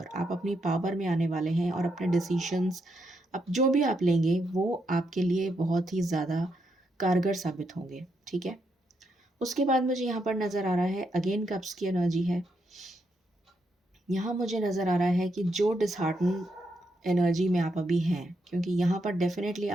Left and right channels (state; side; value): normal; both; correlation 0.80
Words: आप अपनी पावर में आने वाले हैं और अपने डिसीशंस अब जो भी आप लेंगे वो आपके लिए बहुत ही ज़्यादा कारगर साबित होंगे, ठीक है। उसके बाद मुझे यहाँ पर नज़र आ रहा है अगेन कप्स की एनर्जी है। यहाँ मुझे नज़र आ रहा है कि जो डिसहार्टन एनर्जी में आप अभी हैं, क्योंकि यहाँ पर डेफिनेटली